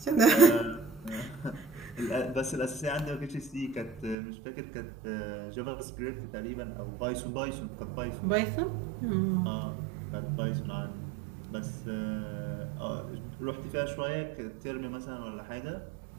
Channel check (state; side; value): drops out; left; at 4.2 s